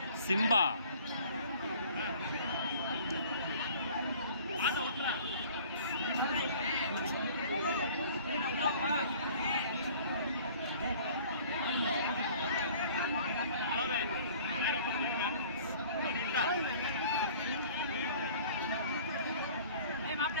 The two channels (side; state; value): both; inverted; correlation -0.50